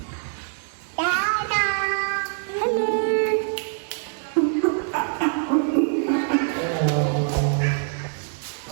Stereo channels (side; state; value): left; silent; digital silence